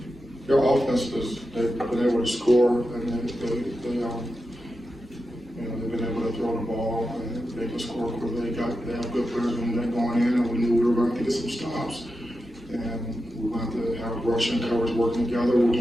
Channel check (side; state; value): both; normal; correlation 0.90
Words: their offense they've been able to score, and they've been able to throw the ball, and they can score quickly. They have good players when they're going in, and we knew we were going to get some stops, and we wanted to have rush and coverage working together.